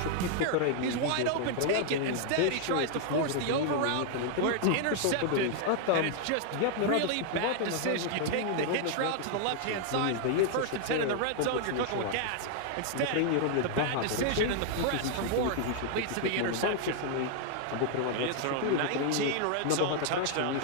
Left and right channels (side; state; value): both; different; correlation 0.00